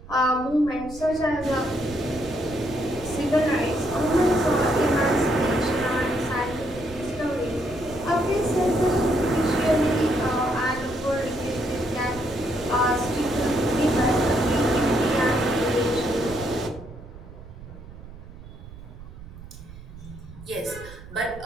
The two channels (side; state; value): right; noise; rumble, 16 dB below the sound